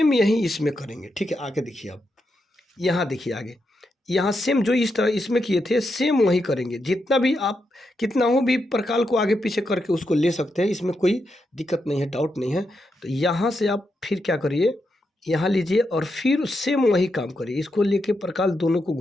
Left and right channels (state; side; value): normal; both; correlation 0.84